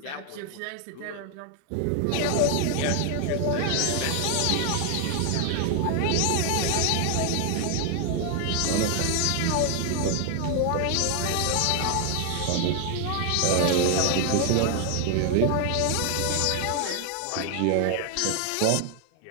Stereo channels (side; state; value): both; different; correlation 0.00